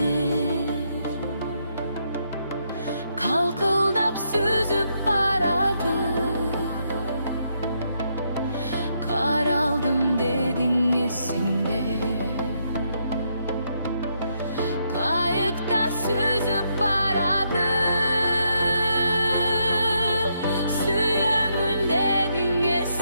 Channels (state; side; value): inverted; both; correlation -0.76